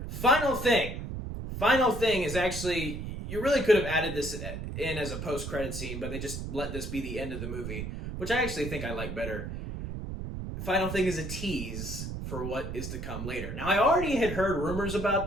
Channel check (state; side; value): noise; right; rumble, 6 dB below the sound